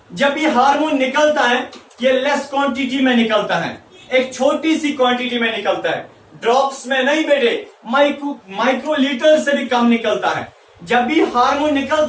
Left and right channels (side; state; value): both; identical; correlation 1.00